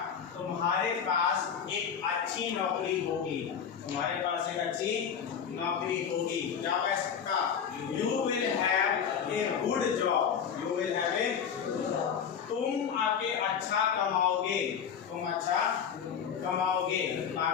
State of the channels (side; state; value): right; quieter; 7.5 dB